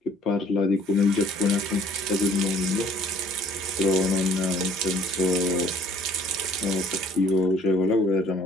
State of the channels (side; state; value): both; normal; correlation 0.57